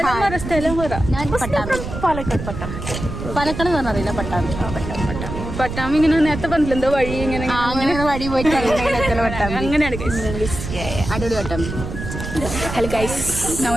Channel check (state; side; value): noise; right; rumble, 7 dB below the sound